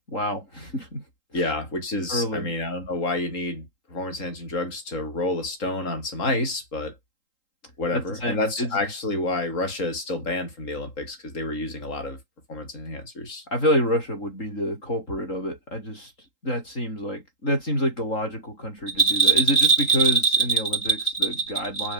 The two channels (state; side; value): late; right; 3.8 ms